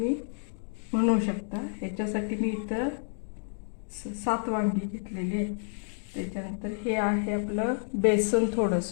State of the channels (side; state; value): right; silent; 58 dB below the other